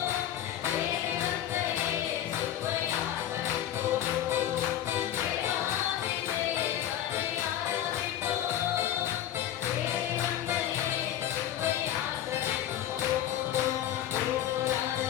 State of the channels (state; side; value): quieter; right; 11.4 dB